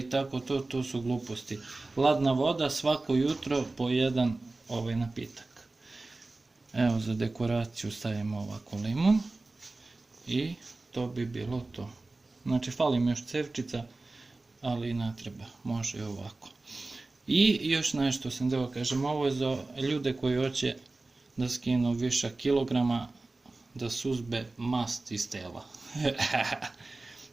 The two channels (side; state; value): left; quieter; 3.2 dB